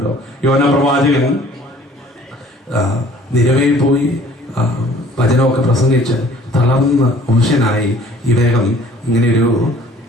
യോനാ പ്രവാചകൻ നിരവയിൽ പോയി വചനമൊക്കെ പ്രസംഗിച്ച് തളർന്ന് അവശനായി ഇദ്ദേഹം ഇങ്ങനെ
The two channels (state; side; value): normal; both; correlation 0.53